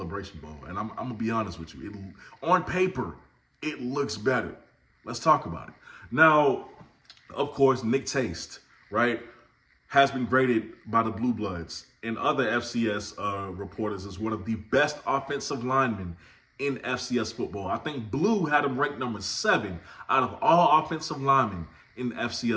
Bowl. And I'm going to be honest with you. On paper, it looks better. Let's talk about it. Now, of course, Nick Taste, right, has been graded by the Blue Bloods and other FCS reporters as one of the best offensive linemen in FCS football. I think Blue had him ranked number 7 out of all offensive linemen in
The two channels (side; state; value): both; identical; correlation 1.00